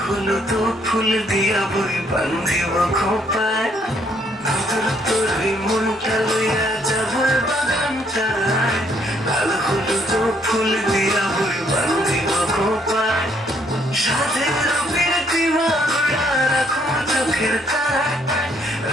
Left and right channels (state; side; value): normal; both; correlation 0.68